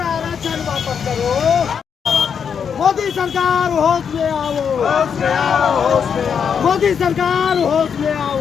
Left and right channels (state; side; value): quieter; right; 7.1 dB